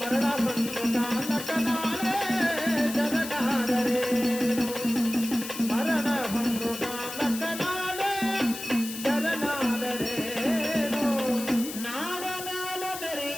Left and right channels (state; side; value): noise; left; hiss, 9 dB below the sound